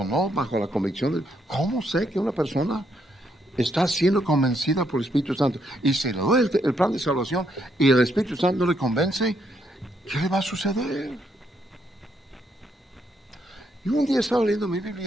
no bajo la convicción. ¿Cómo sé que una persona está siendo convencida por el Espíritu Santo? Y si le doy el plan de salvación y el Espíritu Santo no le convence, ¿qué le va a suceder? Y un día estaba leyendo mi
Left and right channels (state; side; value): normal; both; correlation 0.75